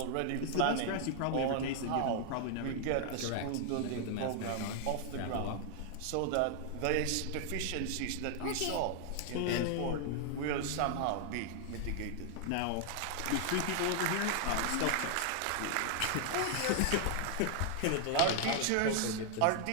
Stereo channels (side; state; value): both; different; correlation 0.00